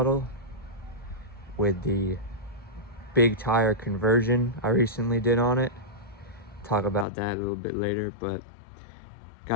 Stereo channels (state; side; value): drops out; right; at 7.1 s